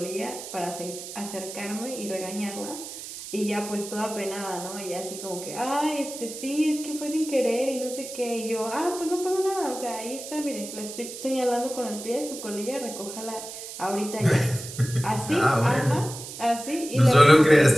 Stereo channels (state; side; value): noise; right; hiss, 11 dB below the sound